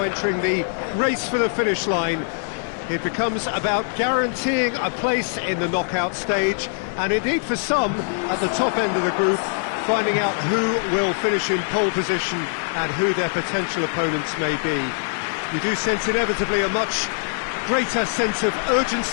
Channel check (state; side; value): silent; right; digital silence